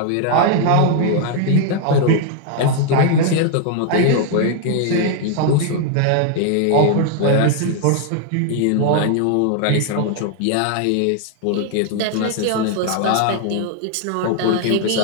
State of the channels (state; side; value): different; both; correlation 0.00